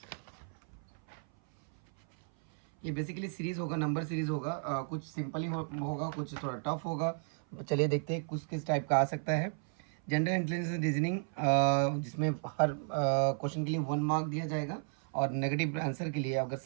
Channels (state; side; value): silent; left; 55 dB below the other